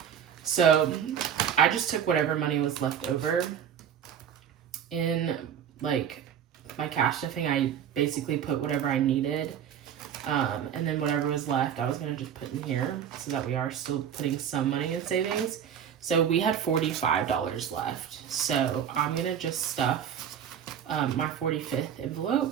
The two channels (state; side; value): quieter; left; 8.8 dB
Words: So I just took whatever money was left over in like my cash stuffing. I basically put whatever I needed. And then whatever was left, I was going to just put in here so that we are still putting some money in savings. So we had $45 left. So I'm going to just stuff my 45th